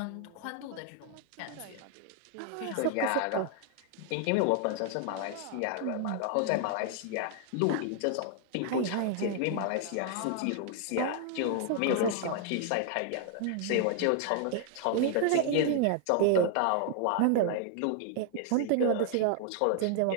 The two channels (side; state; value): both; different; correlation 0.00